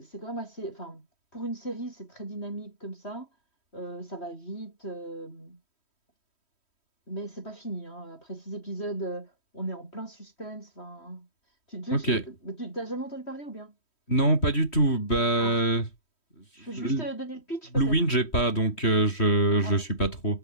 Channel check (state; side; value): late; right; 3.1 ms